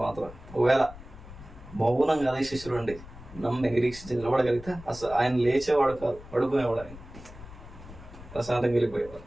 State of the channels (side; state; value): left; noise; rumble, 16 dB below the sound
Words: మాత్రం. ఒకవేళ మౌనంగా అదే శిష్యులు ఉండి నమ్మి నిరీక్షించి నిలబడగలిగితే అసలు ఆయన లేచేవాడు కాదు, పడుకునేవాడు. ఆయన ప్రశాంతంగా వెళ్ళిపోయేవాడు.